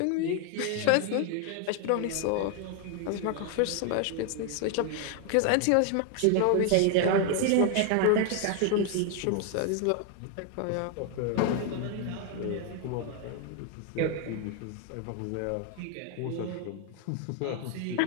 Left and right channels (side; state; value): both; different; correlation 0.01